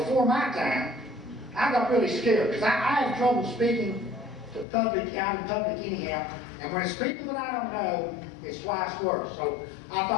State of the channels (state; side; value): drops out; right; at 4.7 s